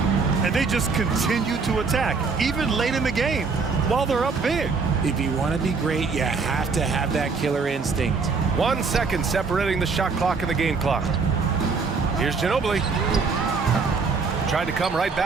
And they just continue to attack, even late in the game, while they're up big. If you want to be great, you have to have that killer instinct. 1 second separating the shot clock and the game clock. Here's Ginobili. Tried to come right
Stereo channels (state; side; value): quieter; left; 4.7 dB